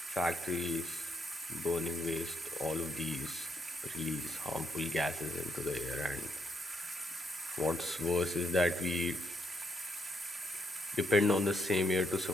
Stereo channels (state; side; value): normal; both; correlation 0.76